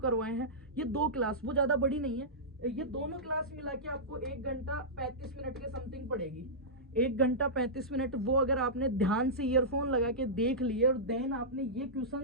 हैं। ये 2 क्लास, वो ज़्यादा बड़ी नहीं है, ये दोनों क्लास मिला के आपको 1 घंटा 35 मिनट के समथिंग पड़ेगी। 1 घंटा 35 मिनट वो अगर आपने ध्यान से ईयरफोन लगा के देख लिए और देन आपने ये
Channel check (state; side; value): normal; both; correlation -0.15